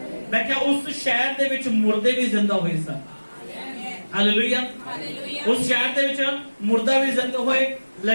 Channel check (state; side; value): inverted; both; correlation -1.00